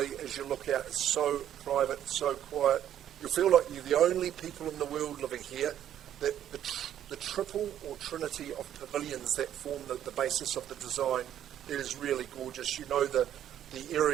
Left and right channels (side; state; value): left; quieter; 10.8 dB